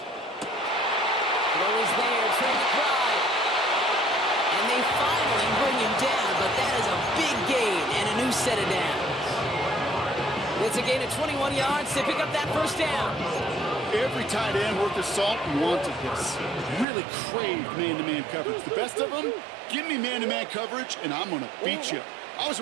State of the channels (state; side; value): drops out; left; at 16.9 s